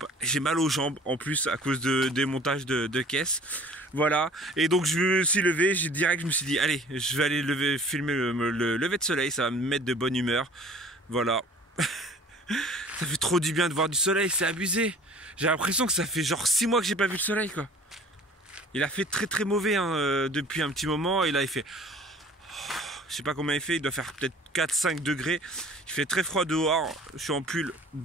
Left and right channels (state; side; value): normal; both; correlation 0.49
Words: j'ai mal aux jambes en plus à cause des montages de caisses. Voilà, et donc je me suis levé, je me suis dit, allez, je vais aller filmer le lever de soleil, ça va me mettre de bonne humeur. Voilà. Ça fait trop du bien de voir du soleil, c'est abusé. J'ai l'impression que ça fait genre 6 mois que j'ai pas vu le soleil, quoi. Il a fait très très mauvais hein, depuis un petit moment, et là il fait... Je sais pas combien il fait, il doit faire peut-être 4-5 degrés. Il fait très froid dehors. Je suis en pull,